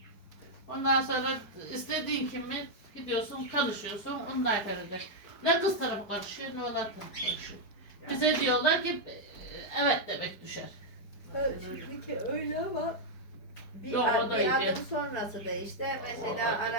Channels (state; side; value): late; right; 4.7 ms